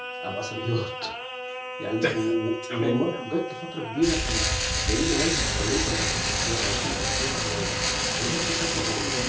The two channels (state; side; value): identical; both; correlation 1.00